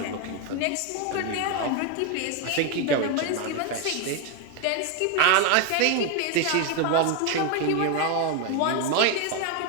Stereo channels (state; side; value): different; both; correlation 0.01